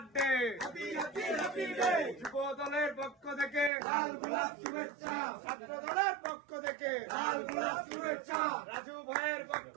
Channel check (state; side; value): drops out; left; at 3.7 s